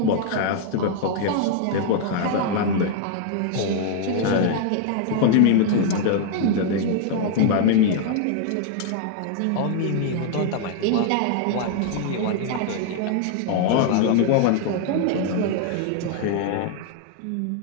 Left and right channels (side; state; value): both; different; correlation 0.00